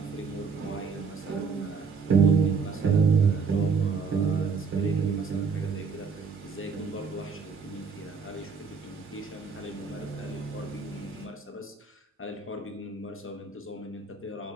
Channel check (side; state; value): left; quieter; 5.2 dB